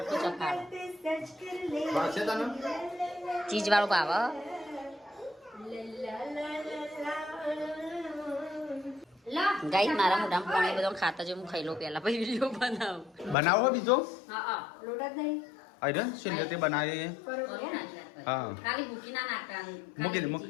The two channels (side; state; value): right; drops out; at 13.4 s